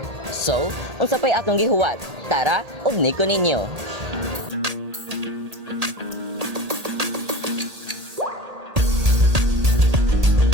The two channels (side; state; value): left; late; 1.8 ms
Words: So, unsa pa'y atong gihuwat? Tara, ugni ko ninyo!